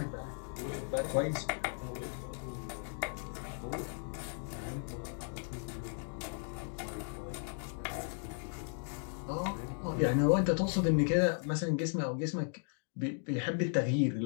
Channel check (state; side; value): silent; right; 54 dB below the other